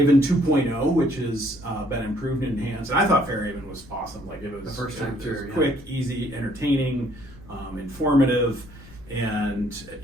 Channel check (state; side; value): noise; left; rumble, 20 dB below the sound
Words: 2.0, which has been improved and enhanced. And I thought Fairhaven was awesome. Like it was, the first time through, quick, easy, entertaining, informative, and